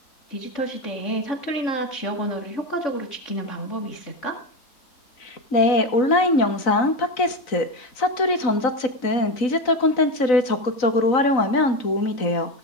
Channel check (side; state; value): right; late; 3.9 ms